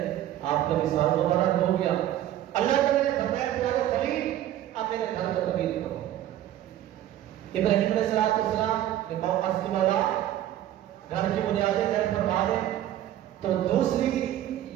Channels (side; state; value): left; quieter; 12.5 dB